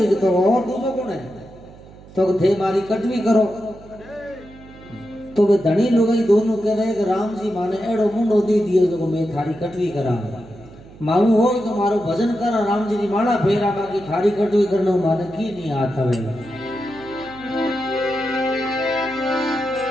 तो और दूजो कौन है तो थे मारी कटवी करो तो वे धनी लुगाई दोनों कह रहे कि राम जी माने एड़ो मुंडो दे दियो जो मैं थारी कटवी करा मालूम हो तो मारो भजन करा राम जी की माला फेरा बाकी थारी कटवी करना माने की नहीं हाथ हवे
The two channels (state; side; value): noise; right; hum, 20 dB below the sound